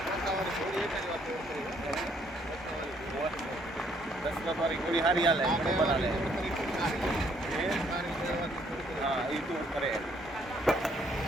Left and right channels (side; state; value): both; normal; correlation 0.67